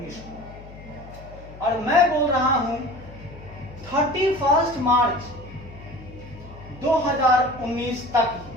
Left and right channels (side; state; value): left; noise; hum, 17 dB below the sound